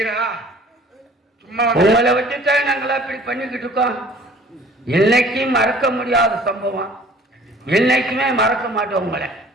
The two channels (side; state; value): both; normal; correlation 0.52